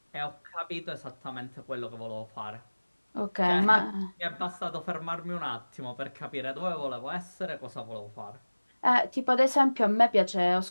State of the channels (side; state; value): both; inverted; correlation -1.00